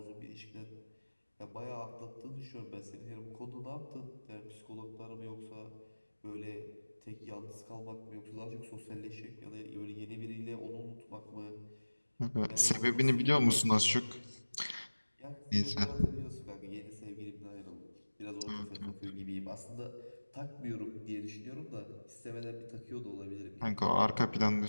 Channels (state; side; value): inverted; both; correlation -1.00